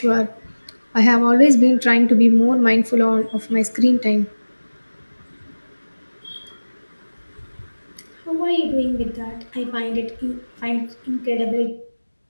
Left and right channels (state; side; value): inverted; both; correlation -1.00